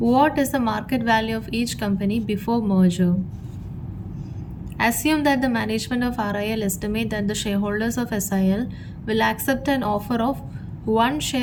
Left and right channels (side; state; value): both; identical; correlation 1.00